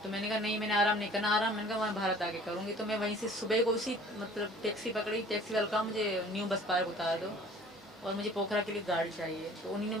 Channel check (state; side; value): normal; both; correlation 0.50